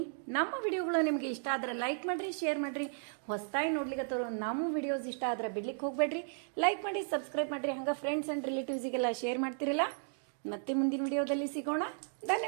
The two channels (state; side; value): silent; left; digital silence